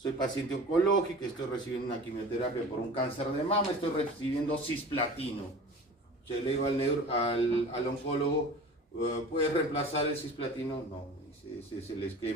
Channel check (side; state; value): both; normal; correlation 0.39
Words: paciente oncológica, estoy recibiendo una quimioterapia por un cáncer de mama, estoy recibiendo cisplatino? Yo le digo al oncólogo, ¿puedes reemplazar el cisplatino? No, ese es el